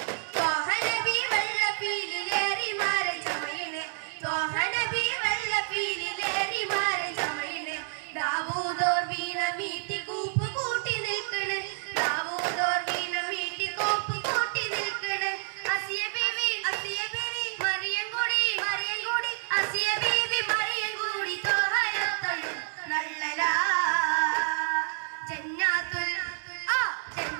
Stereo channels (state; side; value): silent; left; digital silence